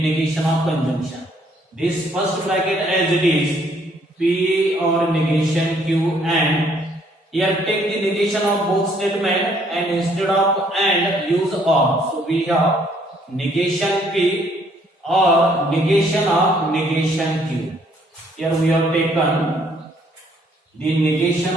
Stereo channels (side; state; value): both; normal; correlation 0.65